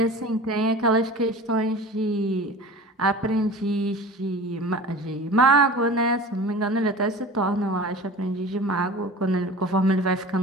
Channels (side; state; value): both; normal; correlation 0.38